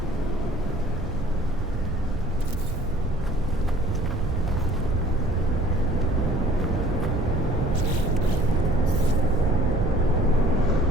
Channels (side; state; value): both; normal; correlation 0.54